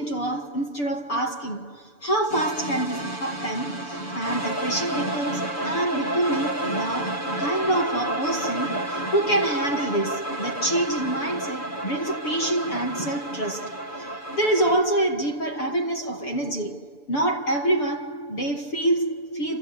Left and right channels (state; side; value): late; right; 6.9 ms